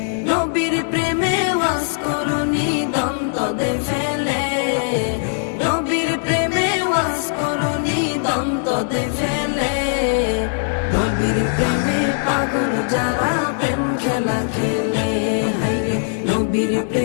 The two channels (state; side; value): silent; right; 65 dB below the other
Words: নবীর প্রেমে ওয়াজ করুনি দন্ত দে ফেলে। নবীর প্রেমে ওয়াজ করুনি দন্ত দে ফেলে। নবীর প্রেমে পাগল যারা প্রেম খেলা খেলে। হায়রে নবীর